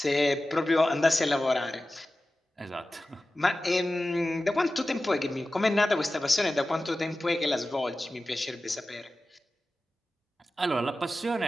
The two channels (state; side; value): normal; both; correlation 0.95